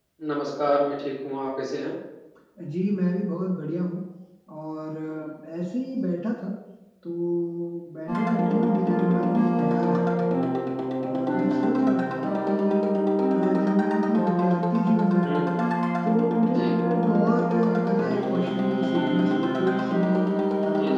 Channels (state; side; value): identical; both; correlation 1.00